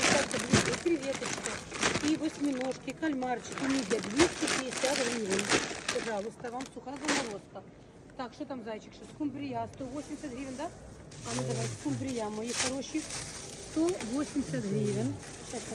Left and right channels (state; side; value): identical; both; correlation 1.00